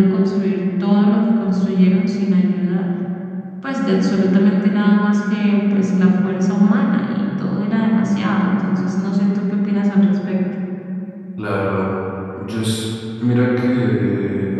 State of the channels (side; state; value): both; identical; correlation 1.00